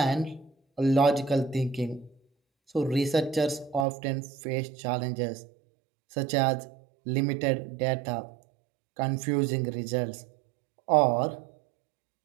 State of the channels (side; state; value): left; drops out; at 3.9 s